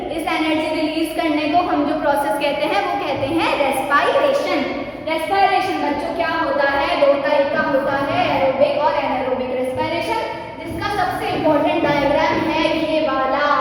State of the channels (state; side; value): identical; both; correlation 1.00